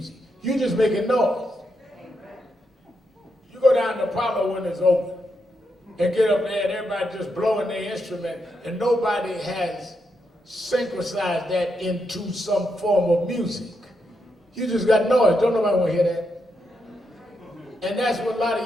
You just making noise. You go down to Apollo when it's open and get up there and everybody just blowing their instrument and nobody has synchronized that into some form of music. You just got noise. Don't nobody want to hear that. And that's what a lot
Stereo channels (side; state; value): both; normal; correlation 0.82